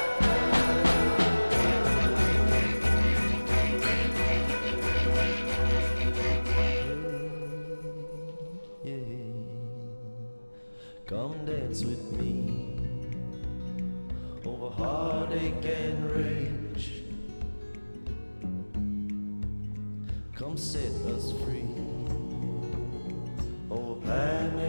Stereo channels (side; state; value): both; inverted; correlation -1.00